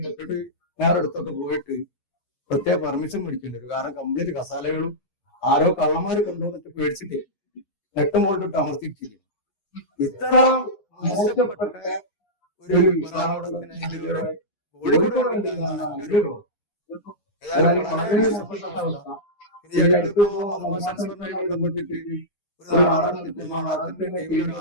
എപ്പോഴും ഞാൻ എടുത്തോട്ട് പോയിട്ട് പ്രത്യേക പെർമിഷൻ മേടിക്കുന്നുണ്ട്. കാരണം കംപ്ലീറ്റ് കസാലകളും ആരോ കള്ളന്മാര് കൊണ്ടുവന്നിട്ട് മേടിച്ചിട്ട് വ്യക്തമായിട്ട് താമസിക്കുന്നു. ഇത്ര മോശപ്പെട്ട ഒരു വിഭാഗത്തിന് കോഴിക്കോട് കണ്ടില്ല എന്നാണ് എന്റെ ഒരു അതായത് വളരെ മോശപ്പെട്ട അവസ്ഥ. ഇനി അടുത്തിപ്പോ മതമാസങ്ങളുമായി ബന്ധപ്പെട്ടിട്ട് ഒരു നാടകം നടത്തിയപ്പോ നാടകത്തിന്റെ ചെയ്യുന്ന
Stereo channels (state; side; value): late; right; 9.8 ms